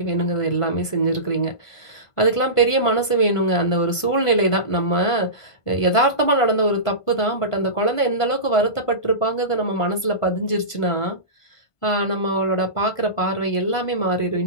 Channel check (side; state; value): right; late; 1.5 ms